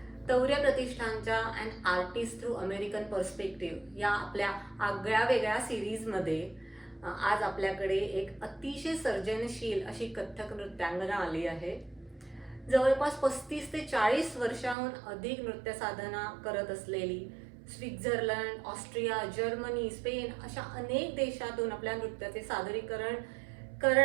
तौर्य प्रतिष्ठानच्या and artist through American perspective या आपल्या आगळ्या वेगळ्या सिरीजमध्ये आज आपल्याकडे एक अतिशय सर्जनशील अशी कथ्थक नृत्यांगना आली आहे. जवळपास 35 ते 40 वर्षाहून अधिक नृत्य साधना करत असलेली, स्वित्झर्लंड, ऑस्ट्रिया, जर्मनी, स्पेन अशा अनेक देशातून आपल्या नृत्याचे सादरीकरण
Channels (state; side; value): drops out; left; at 14.8 s